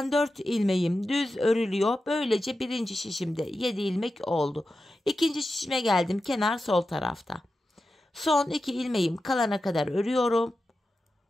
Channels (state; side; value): normal; both; correlation 0.91